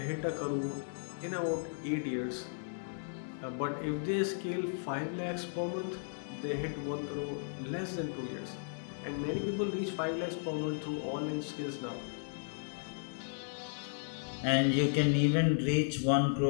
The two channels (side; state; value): right; silent; 54 dB below the other